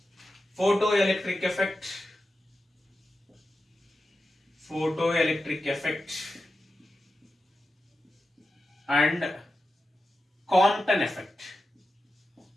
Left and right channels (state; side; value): normal; both; correlation 0.91